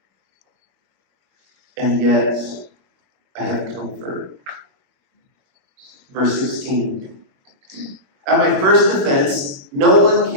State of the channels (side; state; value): left; late; 21 ms